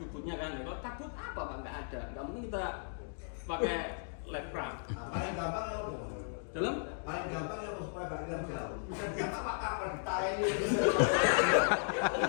bootnya kan. Kalau takut apa Pak? Nggak ada. Nggak mungkin kita pakai life raft. Paling gampang ya udah. Dalam Paling gampang ya supaya balik dalam jauh. Bisa siapa Pak kapan ditayang ini.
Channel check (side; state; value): right; silent; digital silence